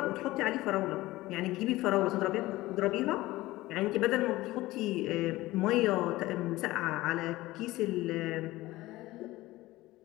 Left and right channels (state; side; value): quieter; right; 18.2 dB